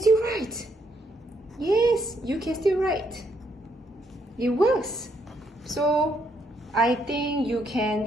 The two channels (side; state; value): both; normal; correlation 0.74